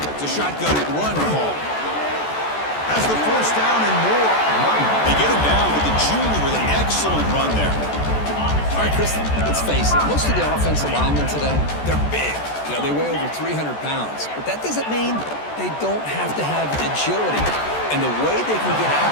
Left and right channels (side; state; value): right; late; 14 ms